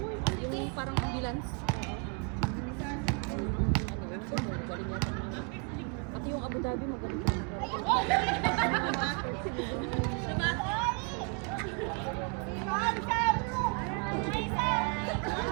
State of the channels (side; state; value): left; quieter; 35.7 dB